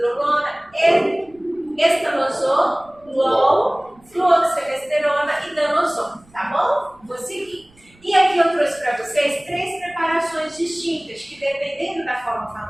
estanosol, fluoxemesterona e danosol, tá bom? Vou seguir. E aqui eu trouxe para vocês 3 preparações distintas, que dependendo da forma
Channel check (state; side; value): noise; right; rumble, 30 dB below the sound